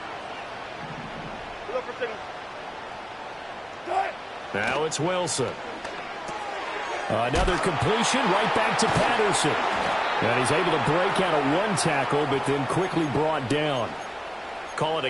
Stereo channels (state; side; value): identical; both; correlation 1.00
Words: Now it's Wilson. Another completion right back to Patterson. And he's able to break out of 1 tackle, but then quickly brought down. Call it